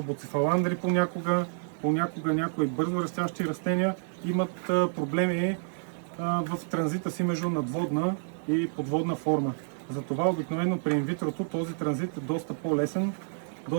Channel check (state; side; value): silent; left; digital silence